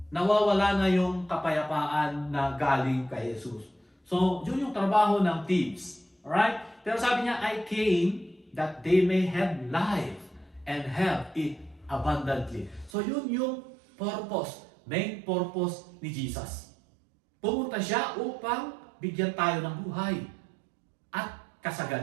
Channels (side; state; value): left; drops out; at 12.9 s